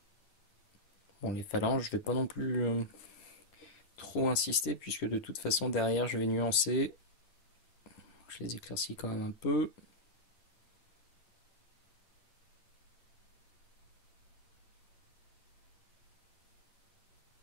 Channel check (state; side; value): late; right; 10 ms